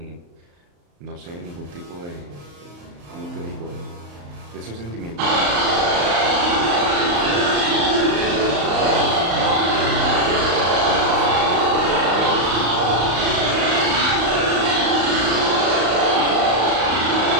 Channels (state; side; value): late; left; 35 ms